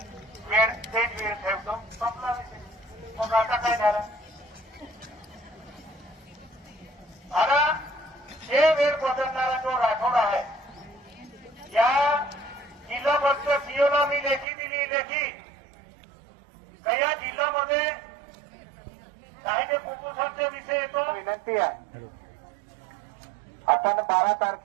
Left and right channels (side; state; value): left; drops out; at 14.5 s